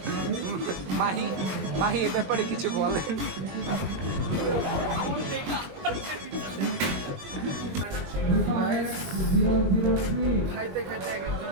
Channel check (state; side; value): late; left; 21 ms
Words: মাহি এ ব্যাপারে কিছু বলেন। খাইতে খাইতে